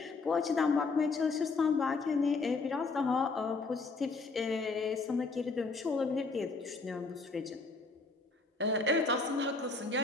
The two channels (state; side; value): quieter; right; 4.0 dB